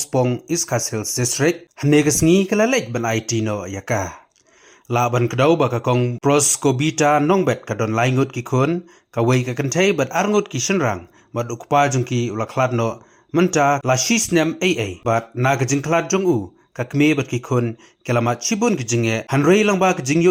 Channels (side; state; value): both; identical; correlation 1.00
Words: Iskas Hills District hanegas ngi kalalej ban IT no ya ka laban kadaw ba ka kong pros kobita nongbet ka don laingut ki kun ka wei ka kantay bat arngut ki shenrang bat ukpa jong ki ulaklad no menta la shisnem AA bat nagajing klad jong u kakme bat ki kun kelamat chibun kijinge hanrei lang ba kijing yo